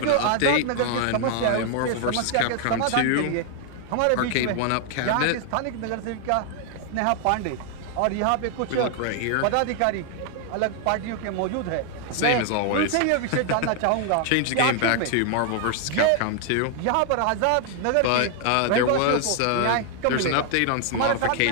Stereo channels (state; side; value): different; both; correlation 0.00